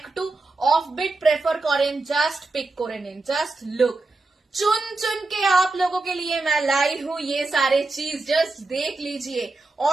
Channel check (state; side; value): quieter; left; 3.3 dB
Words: অফ বিট প্রেফার করেন, জাস্ট পিক করে নিন। জাস্ট লুক, चुन चुन के आप लोगों के लिए मैं लाई हूँ ये सारे चीज। जस्ट देख लीजिए,